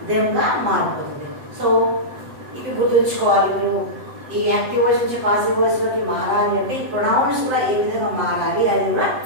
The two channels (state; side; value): late; left; 7.8 ms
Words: దెమ్ గా మారిపోతుంది. సో ఇవి గుర్తుంచుకోవాలి మీరు. ఈ యాక్టివ్ వాయిస్ నుంచి పాసివ్ వాయిస్ లోకి మారాలి అంటే ఈ ప్రొనౌన్స్ కూడా ఏ విధంగా మారాలి, అది కూడా